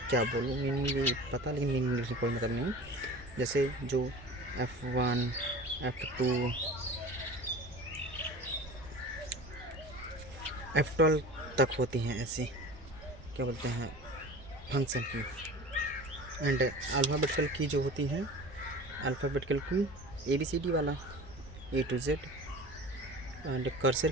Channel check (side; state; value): both; normal; correlation 0.37